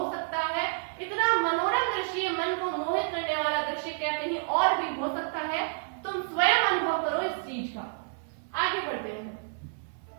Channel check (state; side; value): silent; left; 58 dB below the other